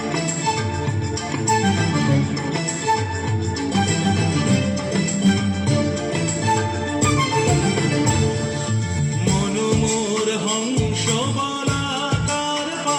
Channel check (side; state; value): both; identical; correlation 1.00